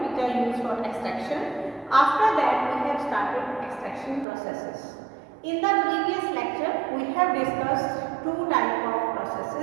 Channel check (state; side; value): drops out; left; at 4.2 s